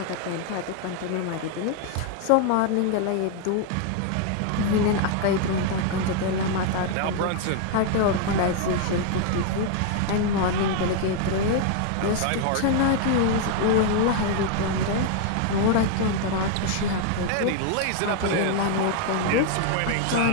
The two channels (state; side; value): different; both; correlation 0.00